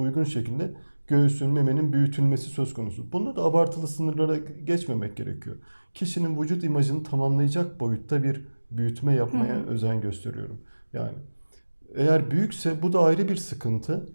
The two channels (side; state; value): both; inverted; correlation -1.00